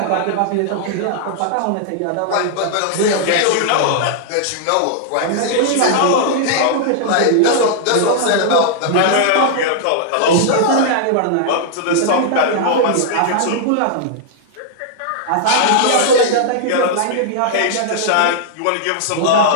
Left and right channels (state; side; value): different; both; correlation -0.01